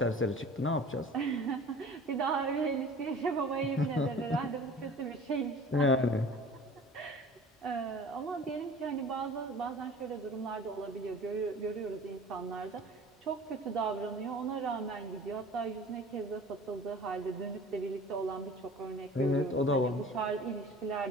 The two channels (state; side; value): normal; both; correlation 0.43